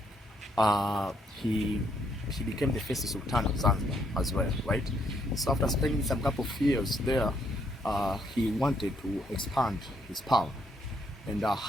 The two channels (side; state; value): both; normal; correlation 0.72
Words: he became the first Sultan of Zanzibar as well, right? So after spending some couple of years there, he wanted to expand his power. And